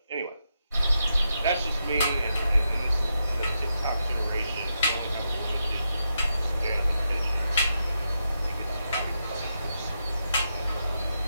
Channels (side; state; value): both; inverted; correlation -0.84